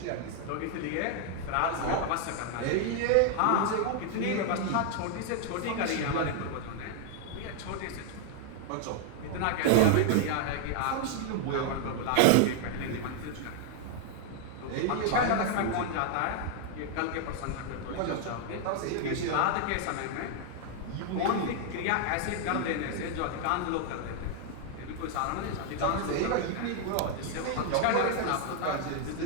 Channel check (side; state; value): both; different; correlation 0.00